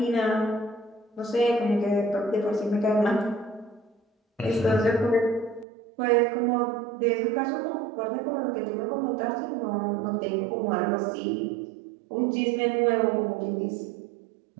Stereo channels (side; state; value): left; drops out; at 5.7 s